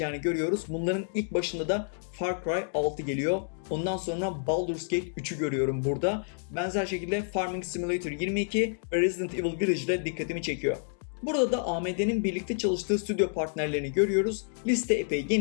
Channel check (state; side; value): silent; right; digital silence